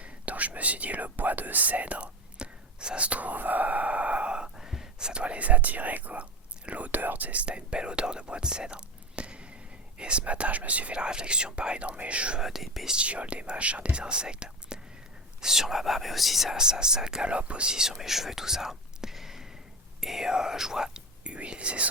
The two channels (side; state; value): both; normal; correlation 0.23